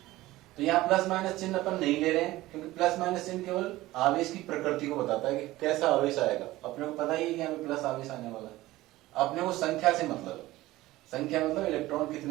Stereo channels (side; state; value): left; quieter; 17.4 dB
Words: तो यहां प्लस माइनस चिन्ह अपन नहीं ले रहे हैं, क्योंकि प्लस माइनस चिन्ह केवल आवेश की प्रकृति को बताता है कि कैसा आवेश आएगा। अपने को पता ही है कि यहां पे प्लस आवेश आने वाला है। अपने को संख्या से मतलब है, संख्या मतलब इलेक्ट्रॉन